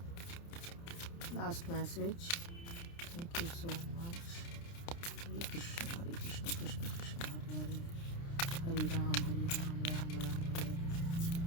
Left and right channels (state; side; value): late; right; 29 ms